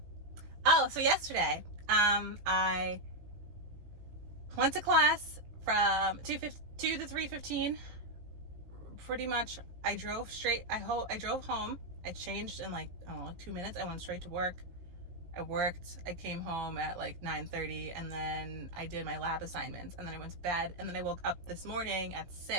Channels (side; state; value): left; late; 17 ms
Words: Oh, so yesterday, I went to class from 2 to 3:15. Pretty much, I drove straight. I drove home. I changed in like, I don't know, like 2 minutes. I went straight to work. I worked. I came home at like 9:30, and then I did my lab assignments, and then I went to bed, and then I woke up this morning at